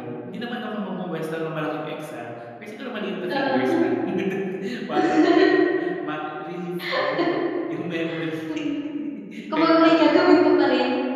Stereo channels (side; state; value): both; identical; correlation 1.00